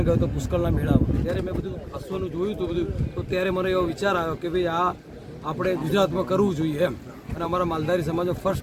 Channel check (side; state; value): both; identical; correlation 1.00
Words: ગયો હતો પુષ્કળના મેળામાં, ત્યારે મેં બધું અશ્વનું જોયું હતું બધું, તો ત્યારે મને એવો વિચાર આવ્યો કે ભાઈ આ આપણે ગુજરાતમાં કરવું જોઈએ એમ, અને અમારા માલધારી સમાજનો